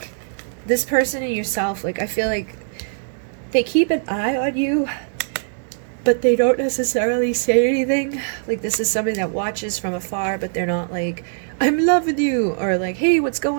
this person and yourself, like I feel like they keep an eye on you, but they don't necessarily say anything. Like this is somebody that watches from afar, but they're not like, I'm loving you, or like, hey, what's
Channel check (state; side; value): silent; left; digital silence